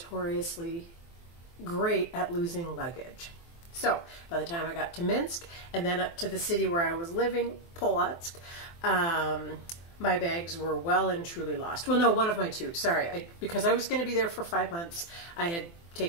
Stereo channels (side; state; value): right; late; 24 ms